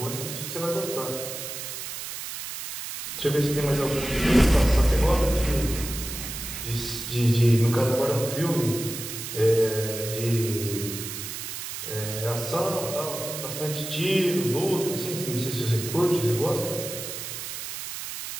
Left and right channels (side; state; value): right; noise; hiss, 7 dB below the sound